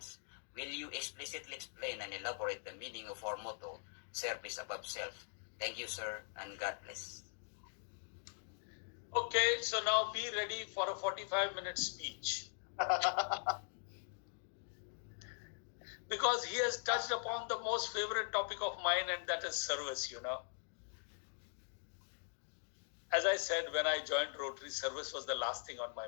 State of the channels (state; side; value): silent; right; digital silence